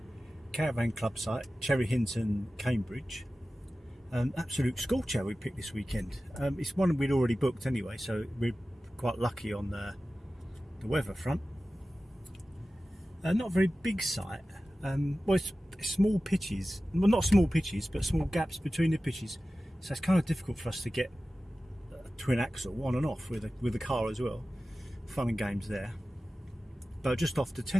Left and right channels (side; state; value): both; normal; correlation 0.95